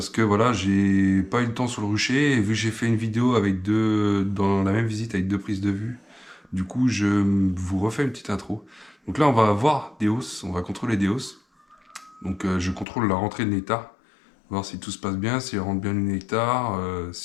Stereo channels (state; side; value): drops out; right; at 12.9 s